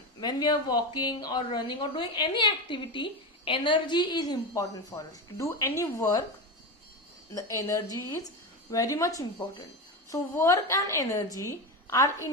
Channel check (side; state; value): both; normal; correlation 0.18